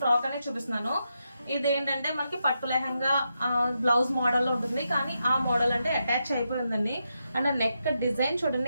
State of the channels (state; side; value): inverted; both; correlation -0.85